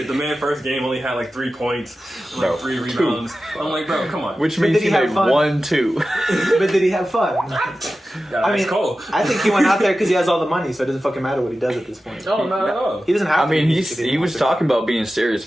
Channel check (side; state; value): both; normal; correlation 0.94